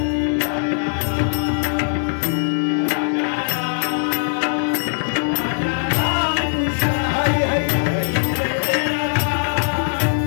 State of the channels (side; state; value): right; silent; 64 dB below the other